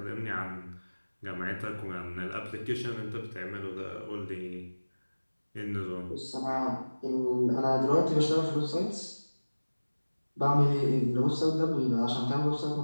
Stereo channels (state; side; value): inverted; both; correlation -1.00